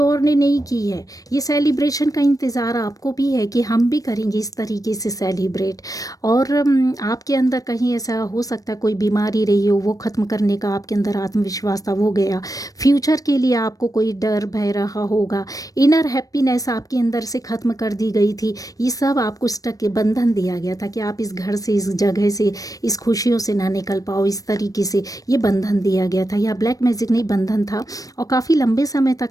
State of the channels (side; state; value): right; late; 0.17 ms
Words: ने नहीं की है। ये सेलिब्रेशन का इंतज़ार आपको भी है कि हम भी करेंगे इस तरीके से सेलिब्रेट। और आपके अंदर कहीं ऐसा हो सकता है कोई बीमारी रही हो, वो ख़त्म करने का आपके अंदर आत्मविश्वास था, वो गया। फ्यूचर के लिए आपको कोई डर भय रहा होगा, इनर हैप्पीनेस आपके अंदर से ख़त्म कर दी गई थी। ये सब आपको स्टक के बंधन दिया गया था कि आप इस घर से, इस जगह से, इस खुशियों से ना निकल पाओ, इस तरीके से ये बंधन दिया गया था। यह ब्लैक मैजिक नहीं, बंधन था। और काफ़ी लंबे समय